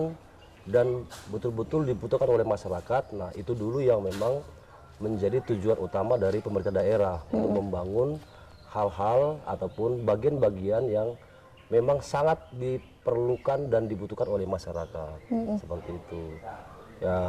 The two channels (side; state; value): both; identical; correlation 1.00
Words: dan betul-betul dibutuhkan oleh masyarakat. Nah, itu dulu yang memang menjadi tujuan utama dari pemerintah daerah untuk membangun hal-hal ataupun bagian-bagian yang memang sangat diperlukan dan dibutuhkan oleh masyarakat. Seperti itu.